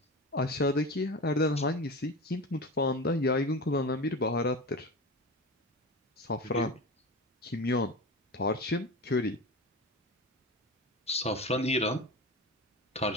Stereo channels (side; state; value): both; normal; correlation 0.28